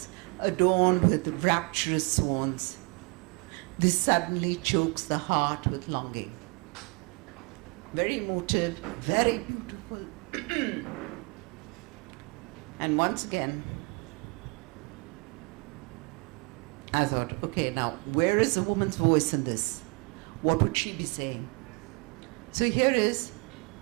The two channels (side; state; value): left; quieter; 31.3 dB